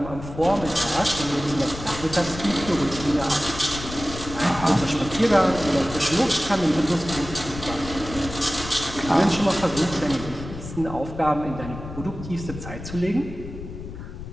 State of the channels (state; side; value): noise; left; rumble, 11 dB below the sound